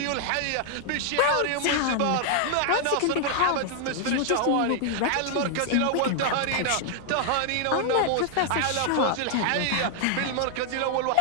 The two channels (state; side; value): different; both; correlation 0.00